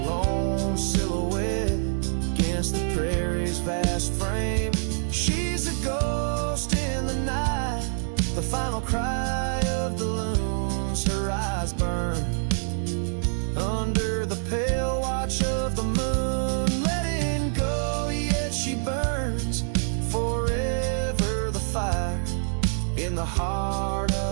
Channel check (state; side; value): silent; left; digital silence